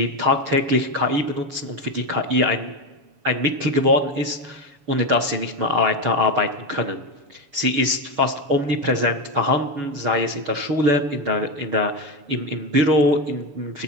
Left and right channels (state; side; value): late; left; 7.1 ms